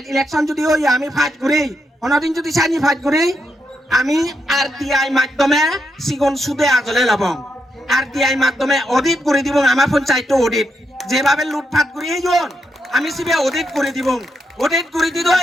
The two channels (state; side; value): normal; both; correlation 0.82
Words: ইলেকশন যদি ওই আমি ফাইট ঘুরি অনদিন যদি চাইনি ফাইট ঘুরি আমি RTI মাধ্যমে সিগন সুদে আজলে লব RTI মাধ্যমে অডিট করে দিব আমার পঞ্চায়েত অডিট যেভাবে লুটপাট করি আমি সিবে অডিট করে দিব অডিট করে